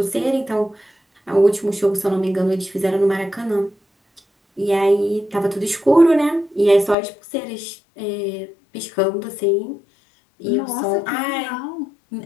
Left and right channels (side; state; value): right; drops out; at 7.0 s